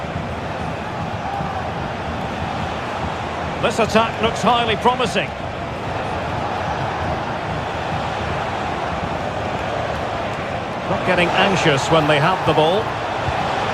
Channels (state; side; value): identical; both; correlation 1.00